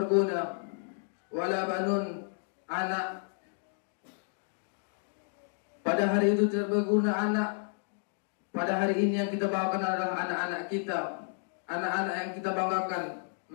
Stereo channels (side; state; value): right; silent; digital silence